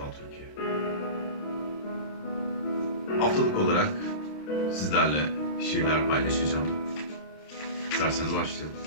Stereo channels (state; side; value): late; right; 27 ms